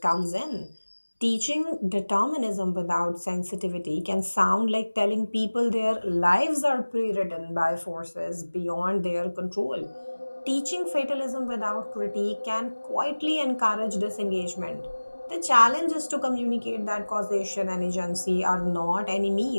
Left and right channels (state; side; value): inverted; both; correlation -1.00